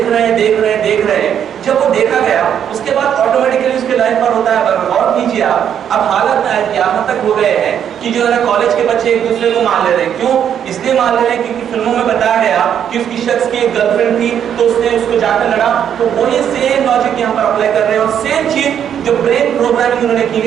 رہے ہیں, جب وہ دیکھا گیا اس کے بعد آٹومیٹکلی اس کے لائف پر ہوتا ہے. غور کیجیے آپ, اب حالت یہاں تک ہو گئے ہیں کہ جو ہے نا کالج کے بچے ایک دوسرے کو مار لے رہے ہیں. کیوں؟ اس لیے مار لے رہے ہیں کیونکہ فلموں میں بتایا گیا کہ اس کی شخص کی ایک گرل فرینڈ تھی تو اس نے اس کو جا کر لڑا. تو وہی سیم لاجک یہاں پر اپلائی کر رہے ہیں, اور سیم چیز جو برین پروگرامنگ انہوں نے کی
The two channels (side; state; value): left; quieter; 9.0 dB